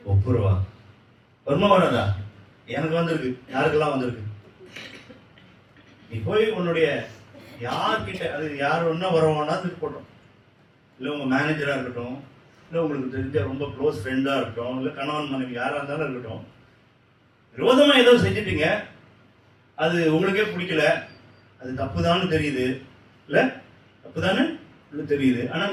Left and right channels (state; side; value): identical; both; correlation 1.00